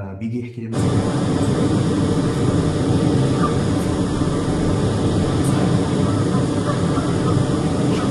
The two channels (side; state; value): both; identical; correlation 1.00